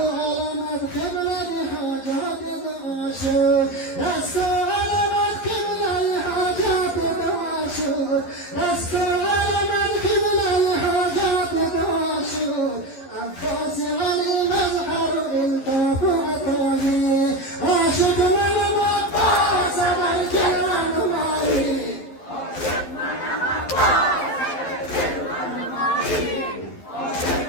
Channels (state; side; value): late; right; 11 ms